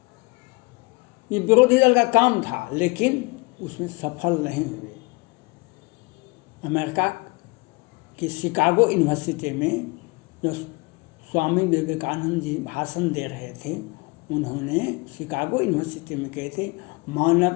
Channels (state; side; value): quieter; right; 27.0 dB